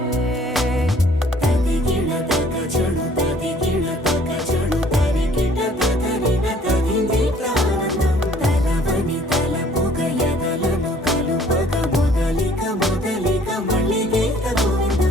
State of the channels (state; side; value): normal; both; correlation 0.57